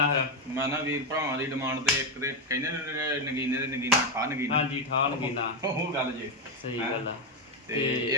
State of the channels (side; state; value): both; normal; correlation 0.07